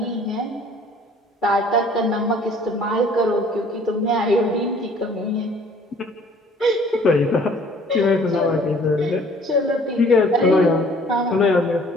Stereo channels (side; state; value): both; normal; correlation 0.55